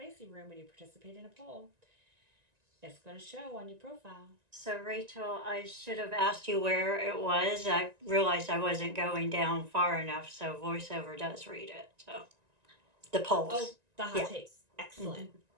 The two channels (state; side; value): late; left; 1.9 ms